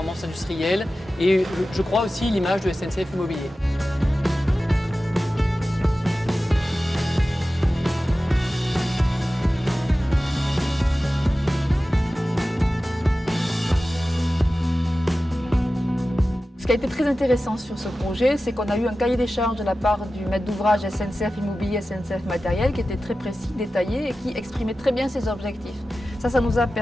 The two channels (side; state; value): both; normal; correlation 0.94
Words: industrielle et je crois aussi l'image de SNCF Immobilier. Ce qui a été très intéressant sur ce projet, c'est qu'on a eu un cahier des charges de la part du maître d'ouvrage SNCF Immobilier, SNCF Matériel, qui était très précis, détaillé et qui exprimait très bien ses objectifs. Ça nous a